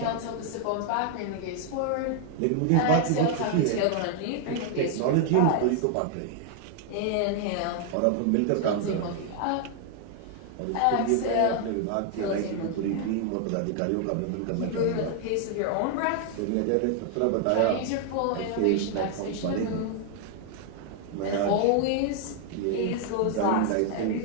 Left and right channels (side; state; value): both; different; correlation 0.00